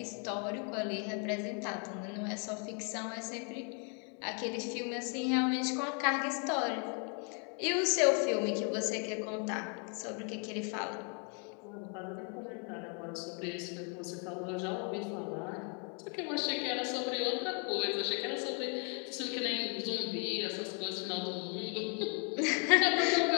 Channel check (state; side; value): quieter; right; 38.1 dB